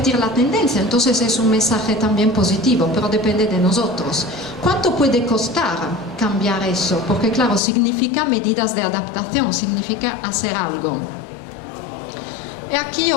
la tendencia. Entonces es un mensaje también positivo, pero depende de nosotros. ¿Cuánto puede costar cambiar eso? Porque claro, significa medidas de adaptación, significa hacer algo. Y aquí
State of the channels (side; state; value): right; drops out; at 7.6 s